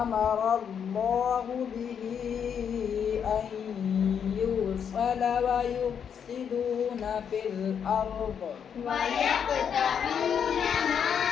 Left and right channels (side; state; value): right; quieter; 7.7 dB